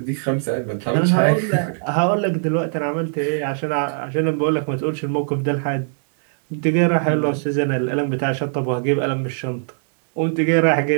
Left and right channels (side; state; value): left; silent; 65 dB below the other